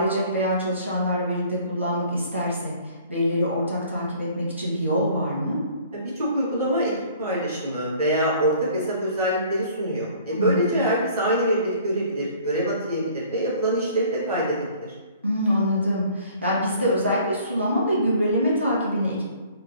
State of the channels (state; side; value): inverted; both; correlation -0.53